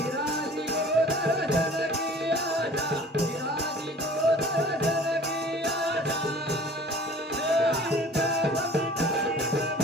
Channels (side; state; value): both; normal; correlation 0.47